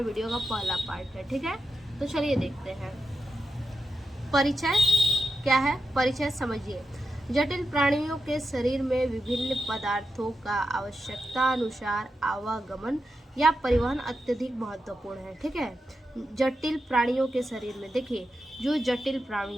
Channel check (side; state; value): both; normal; correlation 0.88